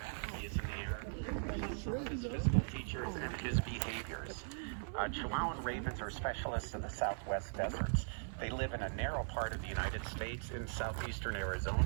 he is in the air, his physical features and his behaviors. Chihuahuan ravens are specialists of the southwest deserts. They live in a narrow part of the United States in southeastern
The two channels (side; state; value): left; silent; 51 dB below the other